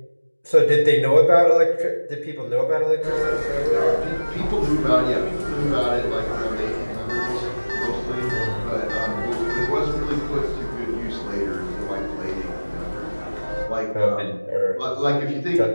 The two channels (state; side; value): inverted; both; correlation -1.00